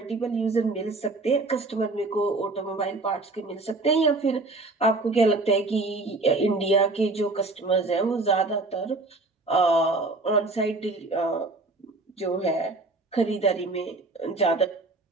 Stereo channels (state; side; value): quieter; left; 3.2 dB